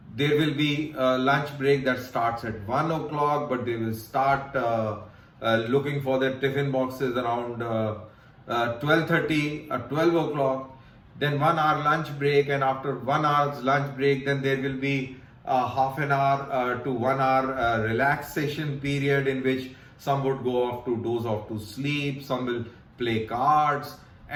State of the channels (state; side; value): identical; both; correlation 1.00